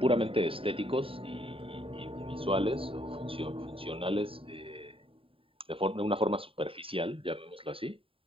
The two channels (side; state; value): left; late; 0.27 ms